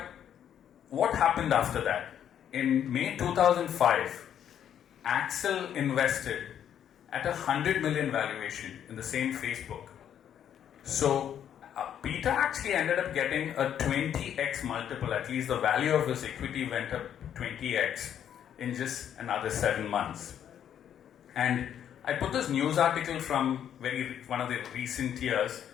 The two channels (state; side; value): quieter; right; 9.6 dB